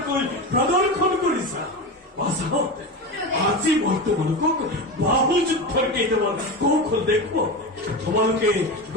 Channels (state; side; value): normal; both; correlation 0.22